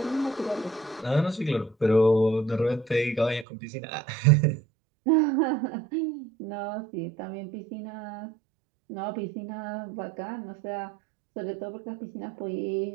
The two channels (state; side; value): drops out; left; at 3.5 s